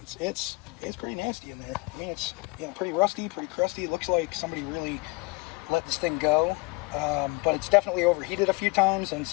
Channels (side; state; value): right; quieter; 26.2 dB